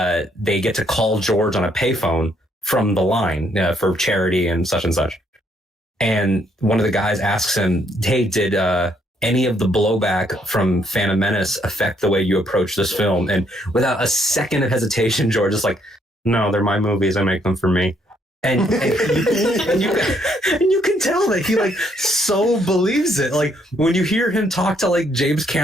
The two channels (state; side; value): normal; both; correlation 0.71